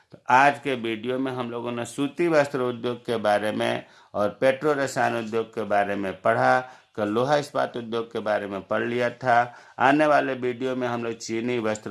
तो आज के वीडियो में हम लोगों ने सूती वस्त्र उद्योग के बारे में और पेट्रो रसायन उद्योग के बारे में पढ़ा। कल लोहा इस्पात उद्योग के बारे में पढ़ लिया था। आने वाले वीडियो में हम लोग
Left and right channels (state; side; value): identical; both; correlation 1.00